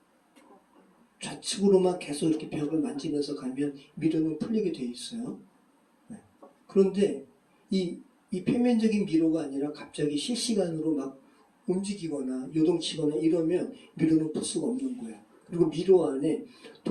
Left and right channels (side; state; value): both; identical; correlation 1.00